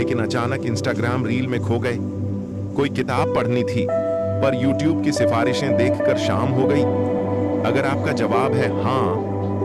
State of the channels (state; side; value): identical; both; correlation 1.00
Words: अचानक इंस्टाग्राम रील में खो गए। कोई किताब पढ़नी थी, पर यूट्यूब की सिफारिशें देखकर शाम हो गई। अगर आपका जवाब है हाँ,